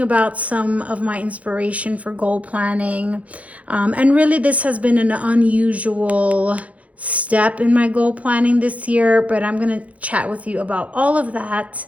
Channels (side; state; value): left; late; 0.067 ms